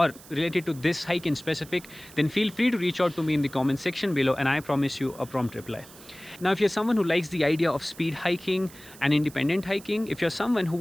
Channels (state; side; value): noise; right; hiss, 20 dB below the sound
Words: related to this hike in specific, then feel free to reach out to me in the comment section below, and I promise you a prompt reply. Now if you're someone who likes the idea of speed hiking and independent hiking, if you're someone who